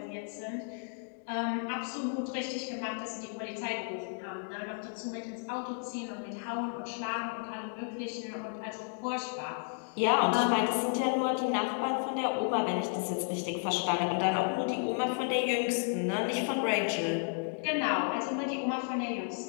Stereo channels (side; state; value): right; silent; 56 dB below the other